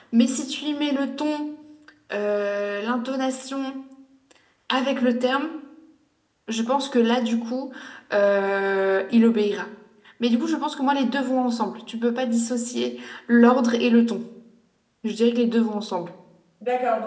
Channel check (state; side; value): identical; both; correlation 1.00